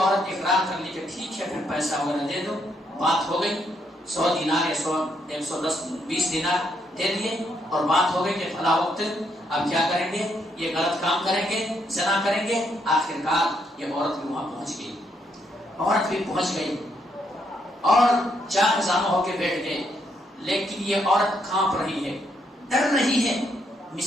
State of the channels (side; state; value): both; normal; correlation 0.75